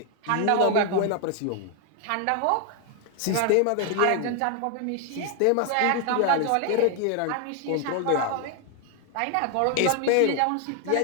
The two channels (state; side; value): different; both; correlation 0.00